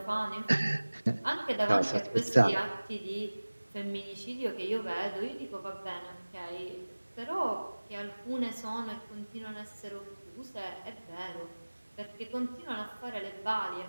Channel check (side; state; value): both; inverted; correlation -1.00